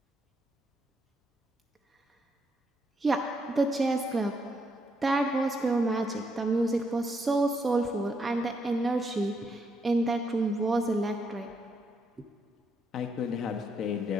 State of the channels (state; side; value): normal; both; correlation 0.77